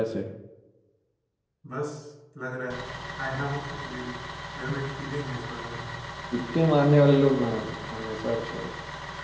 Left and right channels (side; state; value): both; identical; correlation 1.00